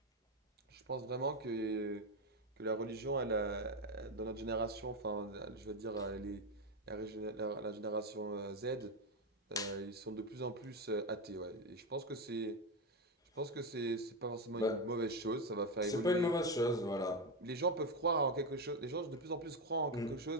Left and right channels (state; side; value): normal; both; correlation 0.11